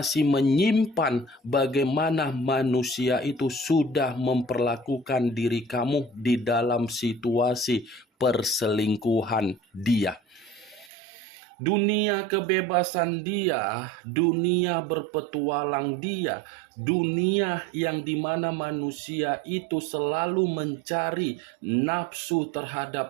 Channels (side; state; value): left; drops out; at 10.9 s